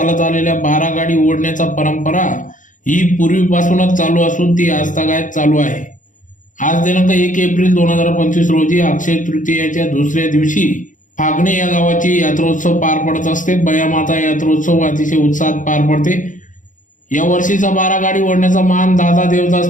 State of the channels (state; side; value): late; right; 0.37 ms